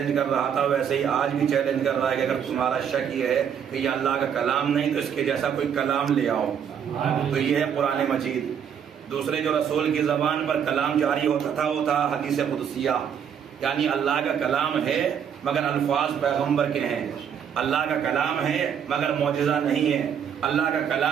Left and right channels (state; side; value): quieter; left; 8.1 dB